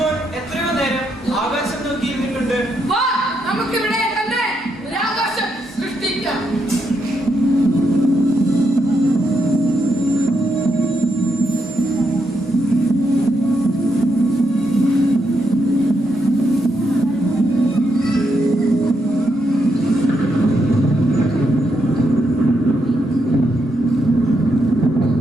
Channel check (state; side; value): normal; both; correlation 0.80